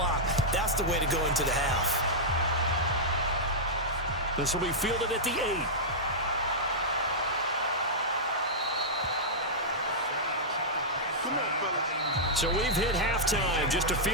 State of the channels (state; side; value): normal; both; correlation -0.10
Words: That's the way to go into the half. This will be fielded at the 8. So we've hit halftime. Just a